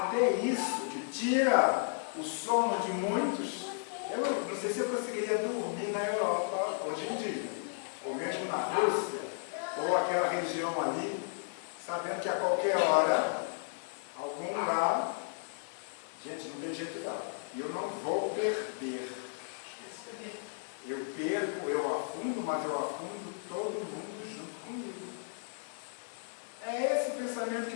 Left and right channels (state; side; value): silent; right; 55 dB below the other